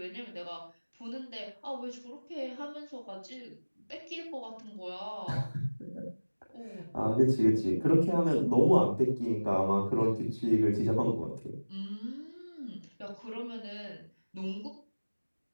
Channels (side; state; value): both; inverted; correlation -1.00